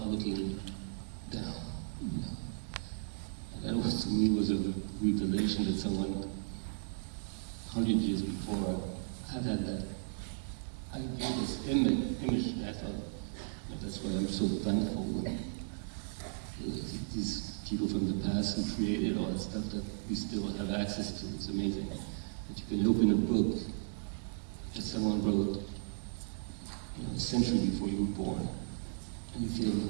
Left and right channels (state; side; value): silent; left; digital silence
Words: looking down. You know? And that was, to me, was a revelation that someone 100 years before had that idea, this image, and I thought, that's why I'm so thankful when these people from the past who created all that stuff that we still have access to. It's amazing that you can open a book that someone wrote, you know, a century before you were born, and you feel,